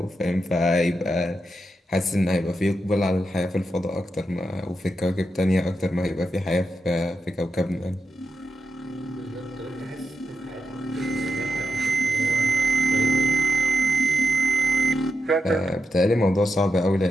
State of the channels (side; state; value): both; normal; correlation 0.85